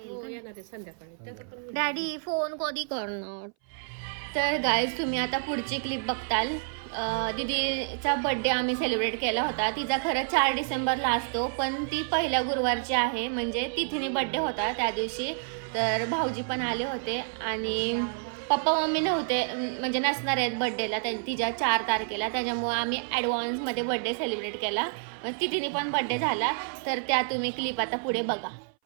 संध्याकाळी. डॅडी फोन कधी करणार. तर गाईज तुम्ही आता पुढची क्लिप बघताल. दीदीचा बड्डे आम्ही सेलिब्रेट केला होता. तिचा खरं 4 डिसेंबरला असतो, पण ती पहिल्या गुरुवारची आहे, म्हणजे तिथीने बड्डे होता त्या दिवशी. तर भाऊजी पण आले होते आणि पप्पा मम्मी नव्हते, म्हणजे नसणार आहेत बड्डेला तिच्या 4 तारखेला. त्याच्यामुळे आम्ही ॲडव्हान्समध्ये बड्डे सेलिब्रेट केला. तिथीने पण बड्डे झाला. तर त्या तुम्ही क्लिप आता पुढे बघा.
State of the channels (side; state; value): left; silent; 59 dB below the other